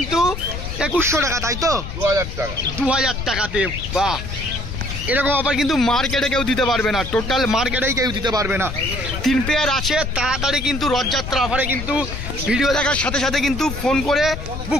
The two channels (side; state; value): left; noise; rumble, 7 dB below the sound